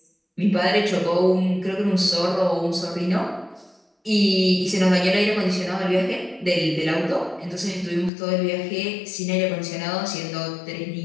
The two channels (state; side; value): drops out; right; at 8.1 s